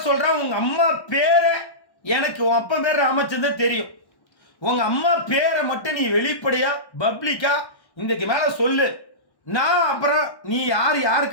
சொல்கிறேன், உங்கள் அம்மா பேரை எனக்கு உன் அப்பா பேர் ராமச்சந்திரன் தெரியும். உங்கள் அம்மா பேரை மட்டும் நீ வெளிப்படையாக பப்ளிக்காக இன்றைக்கு மேலே சொல்லு. நான் அப்புறம் நீ யார்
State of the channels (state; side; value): late; right; 1.1 ms